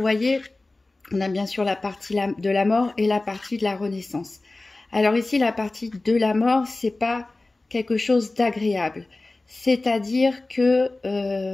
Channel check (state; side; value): quieter; right; 3.1 dB